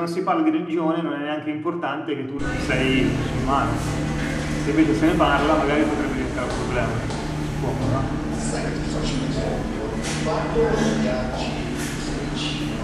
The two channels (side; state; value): both; identical; correlation 1.00